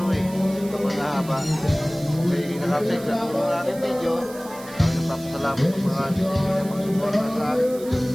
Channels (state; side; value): noise; right; hiss, 18 dB below the sound